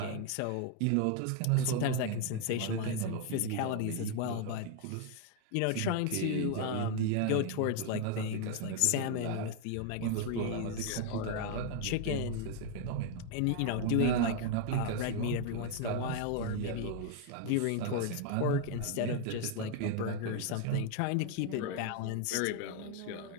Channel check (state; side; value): different; both; correlation 0.00